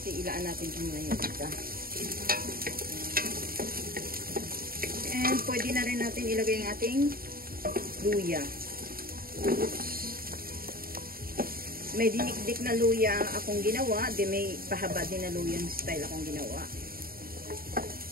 ilaan natin ito muna yung isa. And pwede na rin natin ilagay ang ating luya. May dinikdik na luya akong ginawa, di may pahaba din na luya yung style akong ginawa.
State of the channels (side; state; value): left; late; 0.43 ms